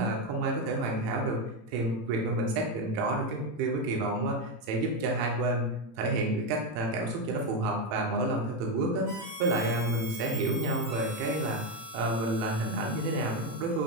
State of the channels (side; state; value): left; late; 18 ms